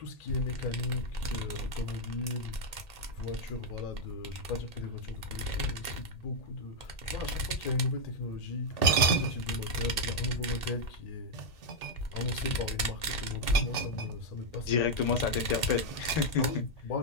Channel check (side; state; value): right; late; 1.8 ms